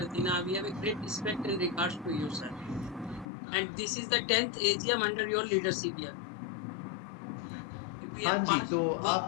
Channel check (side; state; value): right; drops out; at 3.2 s